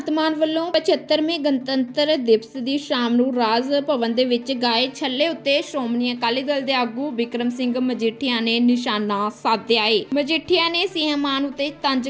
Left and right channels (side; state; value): both; identical; correlation 1.00